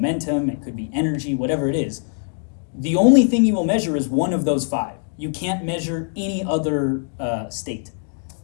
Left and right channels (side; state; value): right; silent; digital silence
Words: it could be energy, whatever it is, the only thing you will measure is one of those 5. You can't measure any other state.